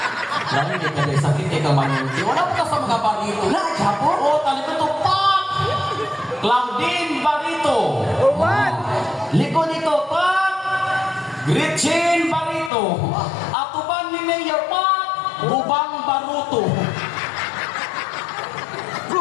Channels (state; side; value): drops out; right; at 12.7 s